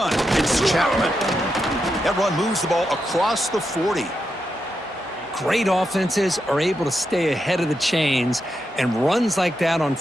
it's Chapman. That run moves the ball across the 40. Great offenses are able to stay ahead of the chains, and runs like that on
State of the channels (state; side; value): normal; both; correlation 0.85